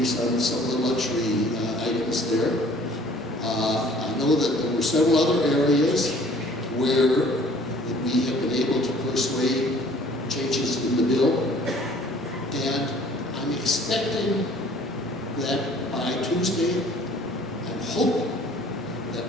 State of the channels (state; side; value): normal; both; correlation 0.53